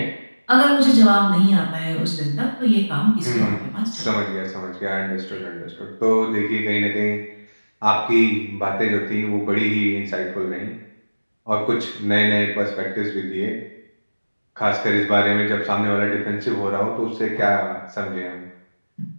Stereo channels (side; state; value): both; inverted; correlation -1.00